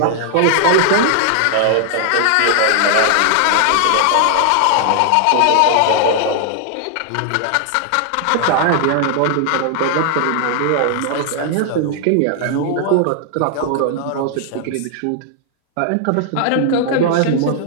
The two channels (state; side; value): different; both; correlation 0.00